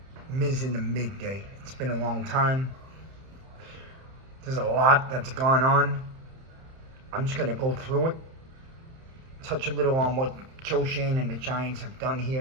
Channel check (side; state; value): left; late; 31 ms